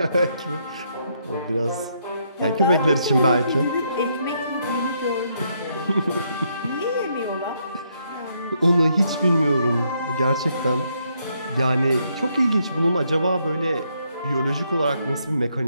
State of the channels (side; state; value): both; inverted; correlation -0.75